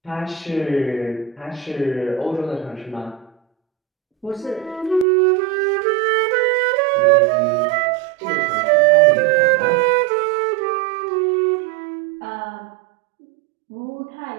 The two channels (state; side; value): drops out; left; at 5.1 s